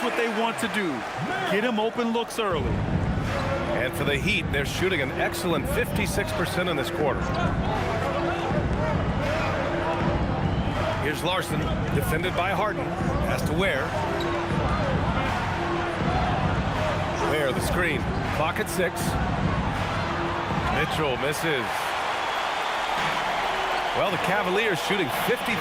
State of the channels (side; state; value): both; identical; correlation 1.00